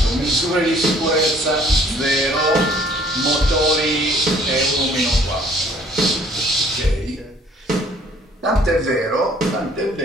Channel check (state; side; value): normal; both; correlation 0.58